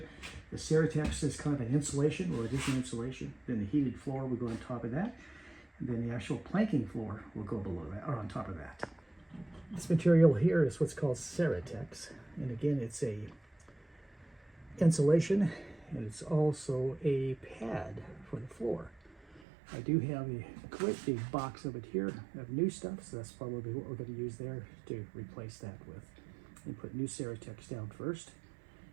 The Ceratex is kind of an insulation, or it is an insulation. Then the heated floor will go on top of that. And then the actual planking floor will go below that, or on top of that. This material here is what's called Ceratex. And again, it's a insulation and it's also a pad for the floor. I do have a quite big box of it here of new stuff, so that's probably what we're going to use there to replace that with. And put new Ceratex down first,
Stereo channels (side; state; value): left; drops out; at 19.5 s